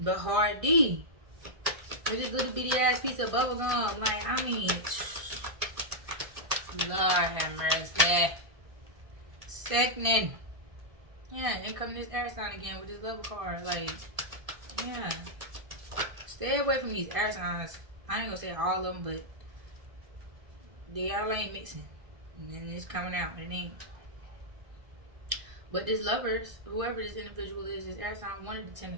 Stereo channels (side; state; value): left; late; 1.7 ms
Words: hard D with this little bitty ass piece of bubble gum. Like, I mean, Lord have mercy. Second. Yeah, and come this air sign again with this level card. Like, yeah. Stay away from these air signs. I ain't gonna say all of them, but y'all ain't mixing. And then it's coming out. It ain't. But this lovers, whoever this individual is, this air sign wanted the 10